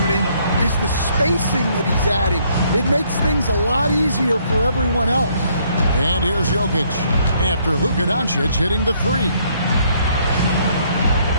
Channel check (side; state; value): both; inverted; correlation -0.67